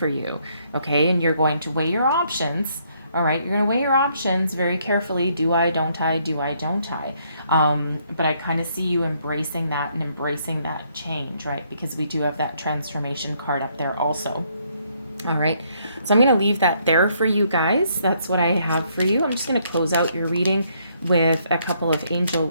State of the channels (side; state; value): both; inverted; correlation -0.70